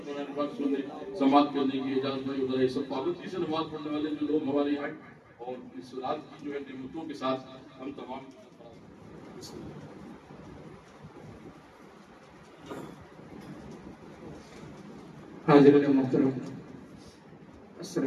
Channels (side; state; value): both; identical; correlation 1.00